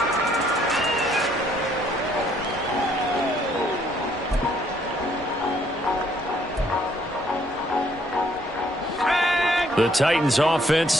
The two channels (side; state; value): both; normal; correlation 0.66